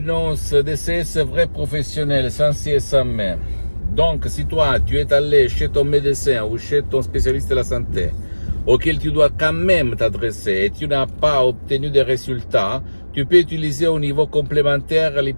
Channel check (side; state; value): both; inverted; correlation -1.00